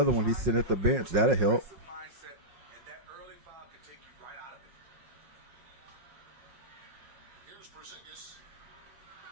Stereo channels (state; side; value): late; left; 5.5 ms